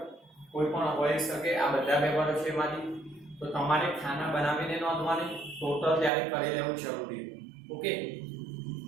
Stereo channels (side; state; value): left; drops out; at 6.1 s